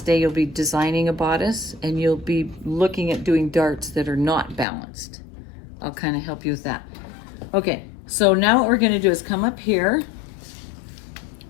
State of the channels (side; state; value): right; drops out; at 4.7 s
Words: day, you'll be designing a bodice, and you'll be looking at doing darts that are not balanced. I'll kind of help you with that. Okay, so now what we're gonna do is come up here,